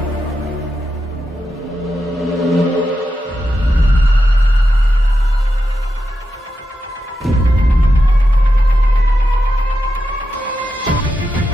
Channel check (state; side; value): normal; both; correlation 0.88